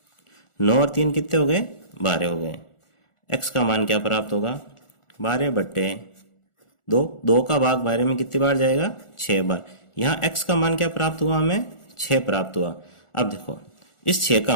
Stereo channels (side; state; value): right; late; 1.4 ms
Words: 9 और 3 कितने हो गए, 12 हो गए। x का मान क्या प्राप्त होगा, 12 बट्टे 2, 2 का भाग 12 में कितनी बार जाएगा, 6 बार। यहाँ x का मान क्या प्राप्त हुआ, हमें 6 प्राप्त हुआ। अब देखो इस 6